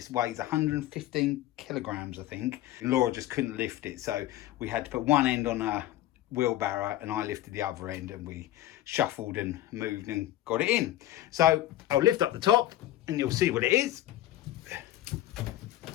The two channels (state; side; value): quieter; right; 14.2 dB